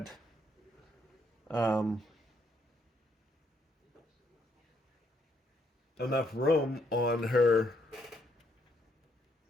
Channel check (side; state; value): both; normal; correlation 0.74